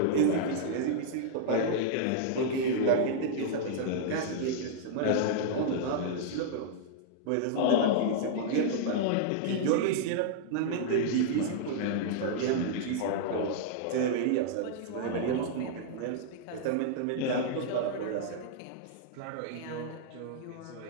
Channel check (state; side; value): different; both; correlation -0.01